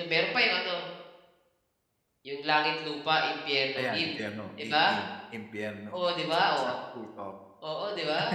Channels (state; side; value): identical; both; correlation 1.00